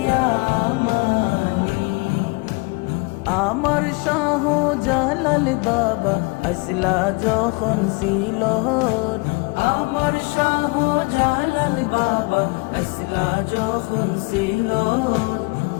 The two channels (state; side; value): quieter; right; 27.6 dB